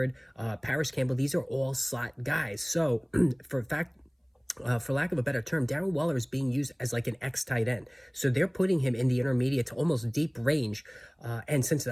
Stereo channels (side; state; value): both; identical; correlation 1.00